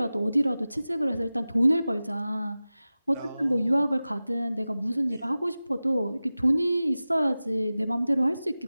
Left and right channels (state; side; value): inverted; both; correlation -0.96